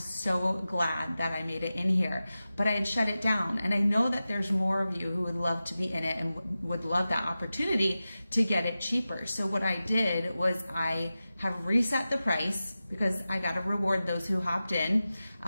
glad that I made it in here, but I had shut it down. And I know that there's more of you who would love to be in it and would love that opportunity to get it cheaper. So what I did was I have reset the price because I got to reward those who hopped in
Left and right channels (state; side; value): inverted; both; correlation -0.94